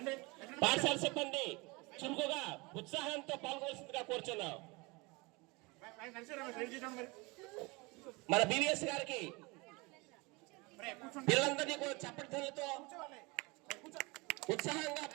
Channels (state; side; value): quieter; left; 26.1 dB